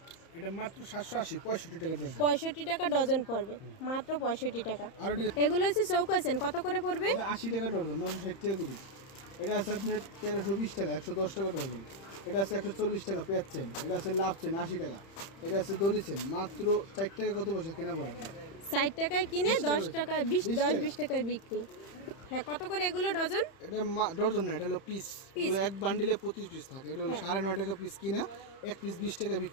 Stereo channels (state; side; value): late; right; 31 ms